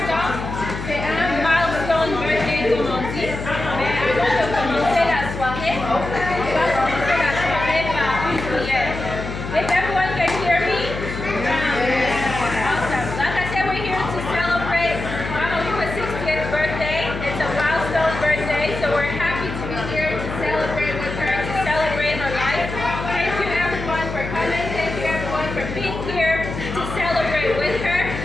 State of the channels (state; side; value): noise; left; hum, 7 dB below the sound